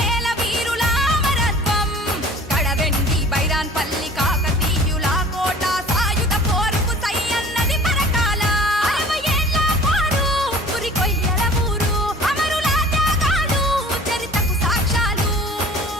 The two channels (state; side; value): normal; both; correlation 0.46